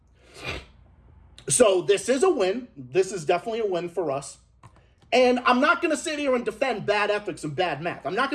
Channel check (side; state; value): both; identical; correlation 1.00